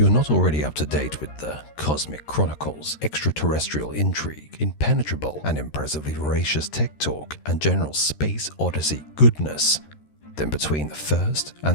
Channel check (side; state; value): right; late; 13 ms